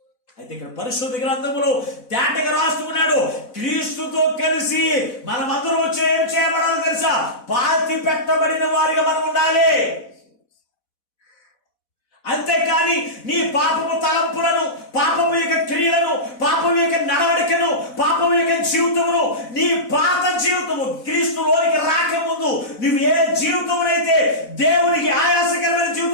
అయితే ఇక్కడ పరిశుద్ధ గ్రంథములో తేటగా రాస్తున్నాడు, క్రీస్తుతో కలిసి మనమందరం ఏం చేయబడాలి తెలుసా? పాతి పెట్టబడిన వారిగా మనం ఉండాలి. అంతేకాని నీ పాపము తలంపులను, పాపము యొక్క క్రియలను, పాపము యొక్క నడవడికను, పాపము యొక్క జీవితమును, నీ పాత జీవితము క్రీస్తులోనికి రాకముందు నువ్వు ఏ జీవితమునైతే దేవునికి ఆయాసకరమైన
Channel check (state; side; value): late; right; 4.0 ms